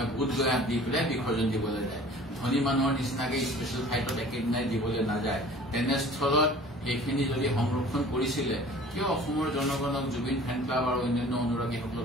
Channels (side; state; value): both; normal; correlation 0.47